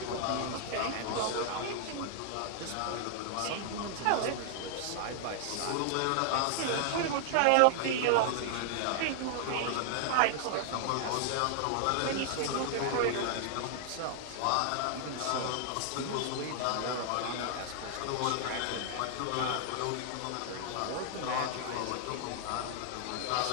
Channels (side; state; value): both; different; correlation 0.00